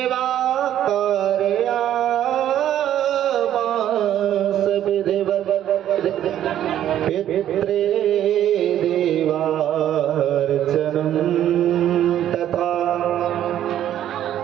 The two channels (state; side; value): quieter; left; 11.4 dB